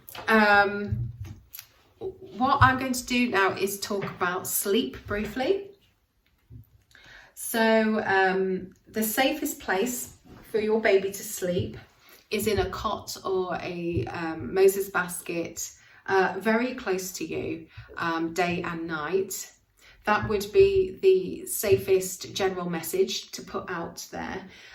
what I'm going to do now is talk about sleep briefly. So the safest place for your baby to sleep is in a cot or a Moses basket very close to you, day and night. That would be the safest general message to put out there.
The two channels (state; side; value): identical; both; correlation 1.00